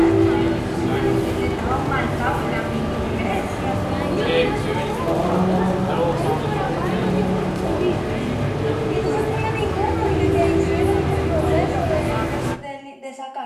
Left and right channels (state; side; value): identical; both; correlation 1.00